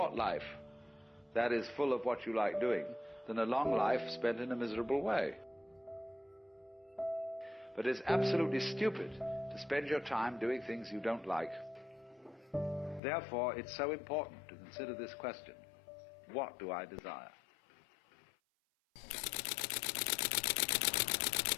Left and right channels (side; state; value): right; drops out; at 13.0 s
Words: life that is full of what you like doing than a long life spent in a miserable way. But it's absolutely stupid to spend your time doing things you don't like. Therefore, it's so important to consider this question: what do I desire?